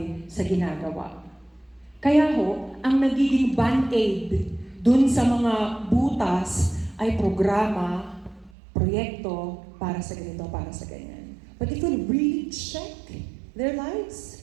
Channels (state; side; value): drops out; left; at 8.5 s